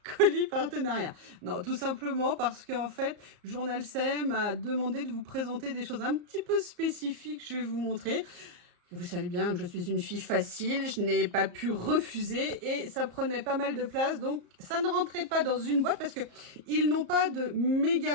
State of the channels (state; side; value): late; left; 34 ms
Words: colis partenariats. Non, tout simplement parce qu'en fait, Journal C m'a demandé de vous présenter des choses un petit peu spécifiques, je vais vous montrer. Vous savez bien que je suis une fille facile, je n'ai pas pu refuser et ça prenait pas mal de place, donc ça ne rentrait pas dans une boîte parce que ils n'ont pas de